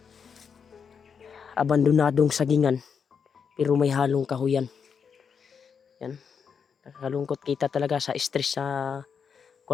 abandonadong sagingan. Pero may halong kahuyan. Yan. Nakakalungkot kita talaga sa stress sa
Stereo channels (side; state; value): right; quieter; 6.6 dB